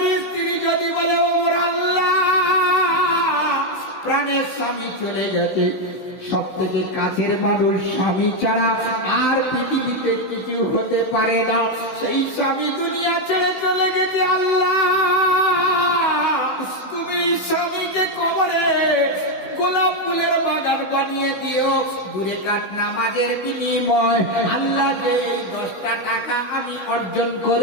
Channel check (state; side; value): late; right; 16 ms